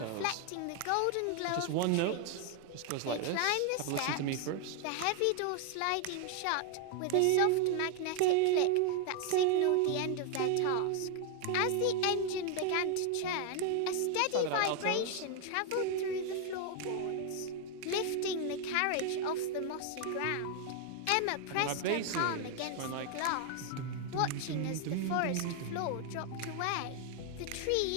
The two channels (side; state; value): both; different; correlation 0.01